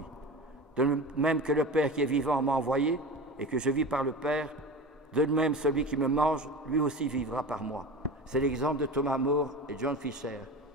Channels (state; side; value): normal; both; correlation 0.30